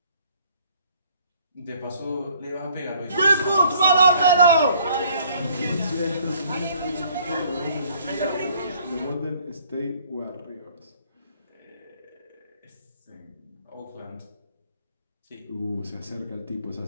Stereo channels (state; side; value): inverted; both; correlation -0.59